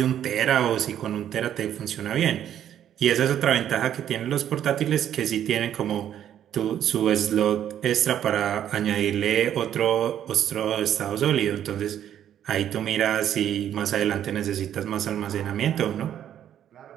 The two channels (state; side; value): quieter; left; 10.4 dB